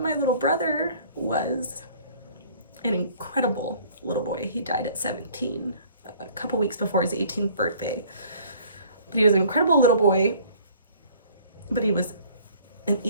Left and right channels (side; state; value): both; inverted; correlation -0.54